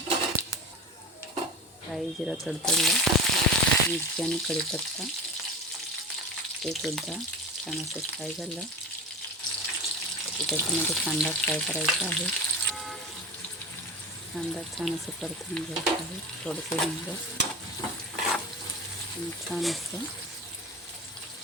राई जिरं तडतडलं, मिरची आणि कढीपत्ता ते सुद्धा छान असं फ्राय झालं. त्याच्यामध्ये कांदा फ्राय करायचा आहे. कांदा छान असं परतून घ्यायचा आहे. थोडंसं हिंग आणि छान असं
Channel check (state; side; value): normal; both; correlation 0.30